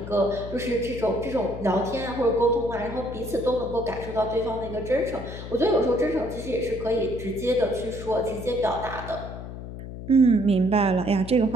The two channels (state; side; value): noise; left; hum, 10 dB below the sound